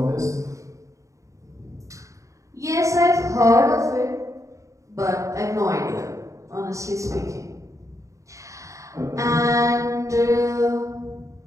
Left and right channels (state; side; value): late; left; 0.15 ms